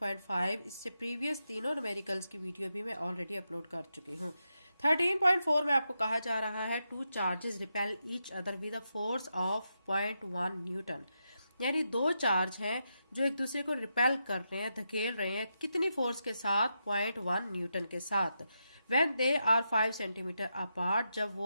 इससे प्रीवियस तीनों न्यूमेरिकल्स की वीडियो भी मैं ऑलरेडी अपलोड कर चुकी हूँ। 13.4 में आपको कहा जा रहा है two charges repel each other with a force of 0.1 Newton. यानी दो चार्ज हैं जो एक दूसरे को रिपेल कर रहे हैं, धकेल रहे हैं। कितनी फोर्स के साथ? 0.1 न्यूटन के साथ। When they are 5 centimetre apart, जब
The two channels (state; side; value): inverted; both; correlation -0.85